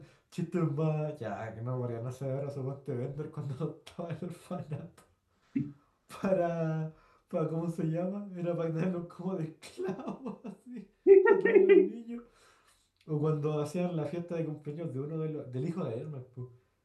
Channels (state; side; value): identical; both; correlation 1.00